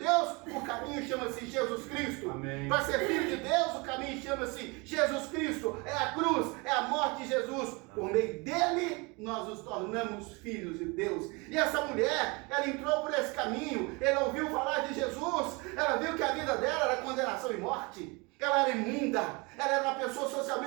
o caminho chama-se Jesus Cristo. Para ser filho de Deus, o caminho chama-se Jesus Cristo. É a cruz, é a morte de Jesus. Por meio dele, nós nos tornamos filhos de Deus. E essa mulher, ela entrou por esse caminho. Ela ouviu falar de Jesus. Ela viu que a vida dela era condenação e morte. Ela era imunda. Ela era uma pessoa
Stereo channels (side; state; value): left; quieter; 27.8 dB